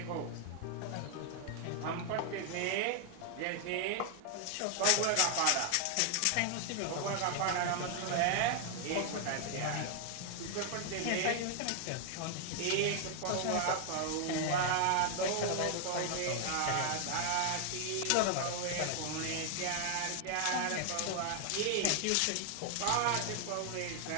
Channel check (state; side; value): different; both; correlation 0.00